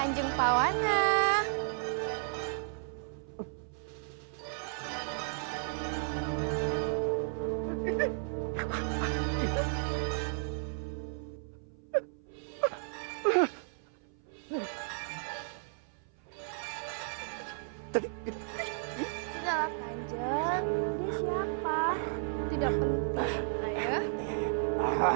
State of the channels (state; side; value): silent; left; 55 dB below the other